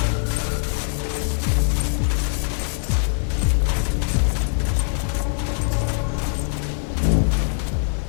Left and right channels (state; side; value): silent; right; digital silence